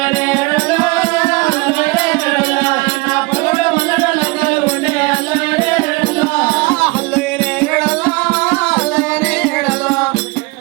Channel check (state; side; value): quieter; left; 25.4 dB